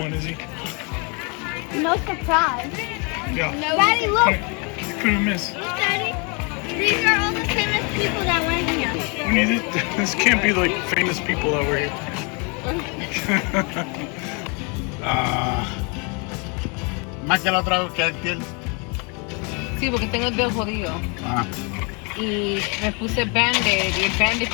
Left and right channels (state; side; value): quieter; right; 32.9 dB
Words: Izzy. No surprise. Yeah. No. Daddy, look. You couldn't miss. Look, Daddy. These are all the famous people that went here. We need it. This can't be like famous people that were here. Más que la otra vez que aquel. Sí, porque tengo el dedo jodido. Ah. Y me puse Band-Aid. Y el Band-Aid